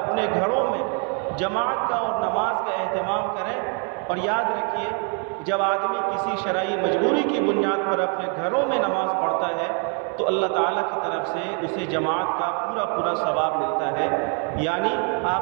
اپنے گھروں میں جماعت کا اور نماز کا اہتمام کریں۔ اور یاد رکھیے، جب آدمی کسی شرعی مجبوری کی بنیاد پر اپنے گھروں میں نماز پڑھتا ہے تو اللہ تعالیٰ کی طرف سے اسے جماعت کا پورا ثواب ملتا ہے۔ یعنی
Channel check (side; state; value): left; quieter; 39.7 dB